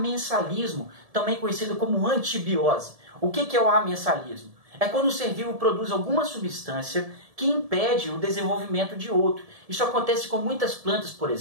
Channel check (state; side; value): late; left; 1.7 ms